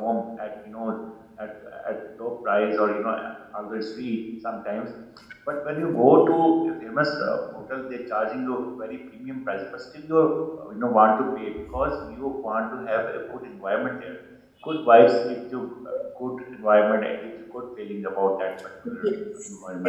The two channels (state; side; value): identical; both; correlation 1.00